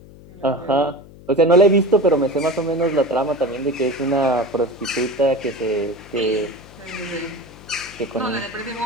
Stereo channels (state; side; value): noise; left; hum, 20 dB below the sound